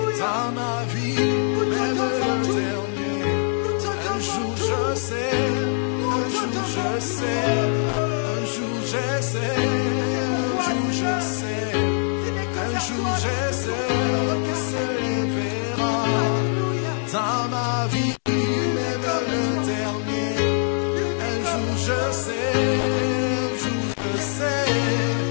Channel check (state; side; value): silent; right; 63 dB below the other